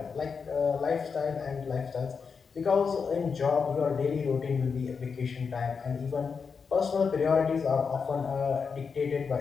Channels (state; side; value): quieter; right; 5.6 dB